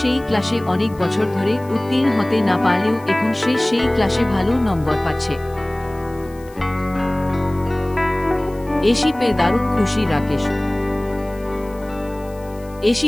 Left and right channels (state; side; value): noise; left; hiss, 26 dB below the sound